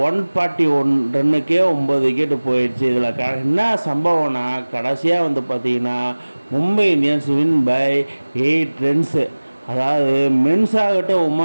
141 ரன்னுக்கே 9 விக்கெட்டு போயிடுச்சு. இதில் என்ன சம்பவம்னா கடைசியாக வந்து பார்த்தீங்கன்னா Mumbai Indians win by 8 runs. அதாவது மென்ஸ் ஆகட்டும்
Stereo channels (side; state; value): both; inverted; correlation -1.00